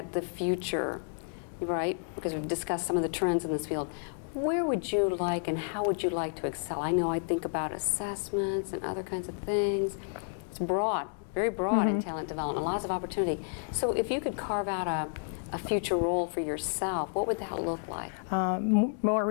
the future, right? Because we've discussed some of the trends in this field. Where would you like and how would you like to excel? I know I think about assessments and other kinds of things. It's broad, very broad in talent development, lots of opportunity. So if you could carve out a future role for yourself, what would that look like? More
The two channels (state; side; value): silent; right; 57 dB below the other